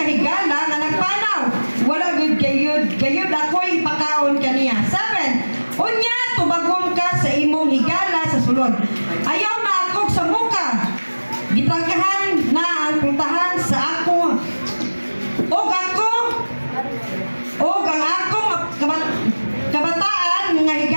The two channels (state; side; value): inverted; both; correlation -1.00